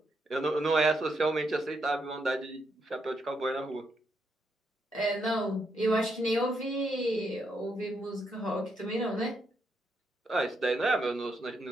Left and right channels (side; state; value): both; normal; correlation 0.79